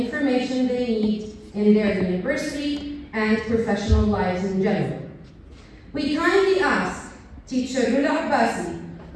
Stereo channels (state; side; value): identical; both; correlation 1.00